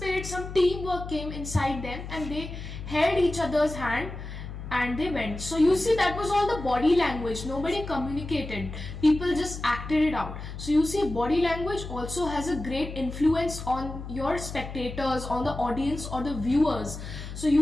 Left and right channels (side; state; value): left; noise; hum, 9 dB below the sound